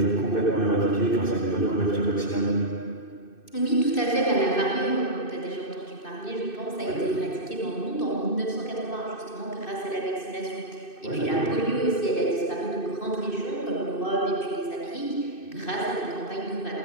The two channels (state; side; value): late; right; 2.6 ms